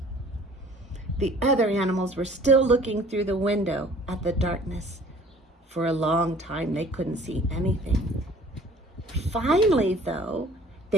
The other animals were still looking through the window at the darkness. For a long time, they couldn't see anything. Finally, though,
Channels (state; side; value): normal; both; correlation 0.51